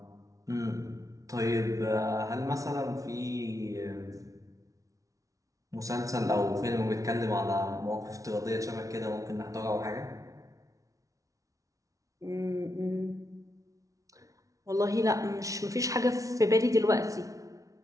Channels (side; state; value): left; late; 0.17 ms